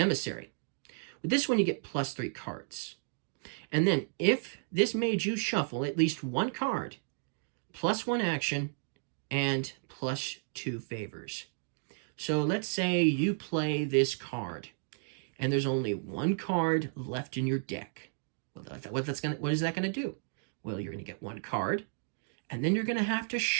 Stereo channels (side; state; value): left; silent; digital silence